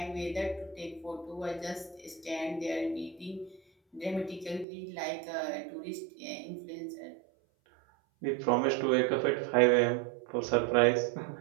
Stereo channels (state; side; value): drops out; left; at 4.7 s